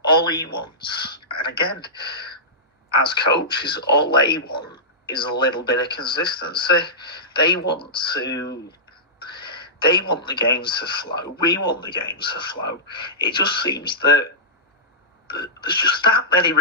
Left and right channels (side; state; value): both; normal; correlation -0.15